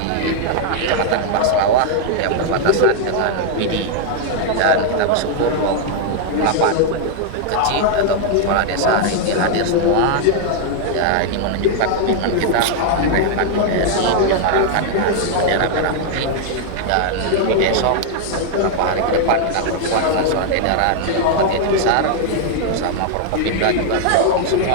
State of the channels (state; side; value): different; both; correlation 0.00